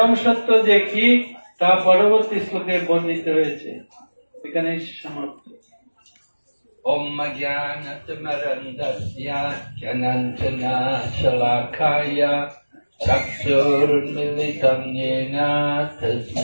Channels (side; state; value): both; inverted; correlation -1.00